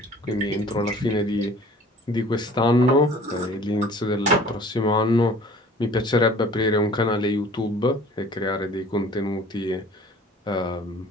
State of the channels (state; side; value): normal; both; correlation 0.48